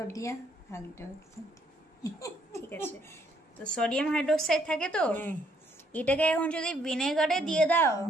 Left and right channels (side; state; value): both; normal; correlation 0.69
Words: hydroxide, ঠিক আছে। তো সোডিয়াম হাইড্রোক্সাইড থাকে। তো এটাকে এখন যদি ভিনেগারে দিয়ে দাও,